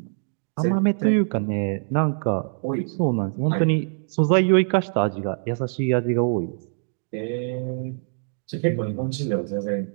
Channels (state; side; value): silent; left; digital silence